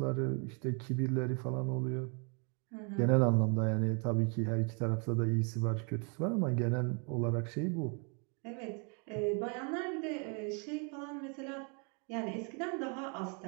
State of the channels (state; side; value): quieter; left; 36.8 dB